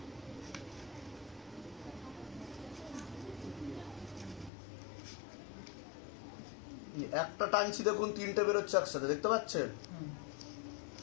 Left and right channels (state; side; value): drops out; right; at 4.5 s